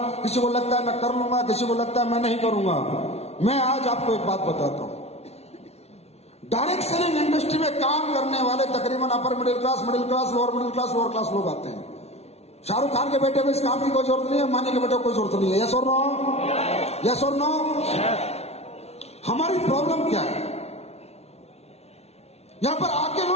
किसी को लगता है मैं कर लूंगा, किसी को लगता है मैं नहीं करूंगा। मैं आज आपको एक बात बताता हूं। डायरेक्ट सेलिंग इंडस्ट्री में काम करने वाले तकरीबन upper middle class, lower class लोग आते हैं। शाहरुख खान के बेटे को इस काम की कोई जरूरत नहीं है, अंबानी के बेटे को कोई जरूरत नहीं है। यस और नो? यस और नो? हमारी प्रॉब्लम क्या है? यहां पर आके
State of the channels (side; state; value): right; late; 0.31 ms